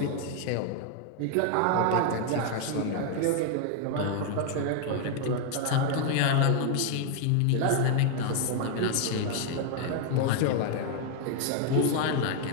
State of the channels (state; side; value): different; both; correlation 0.00